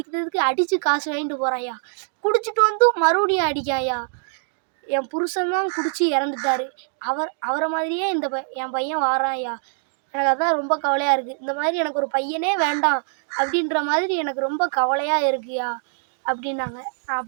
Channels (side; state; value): left; silent; digital silence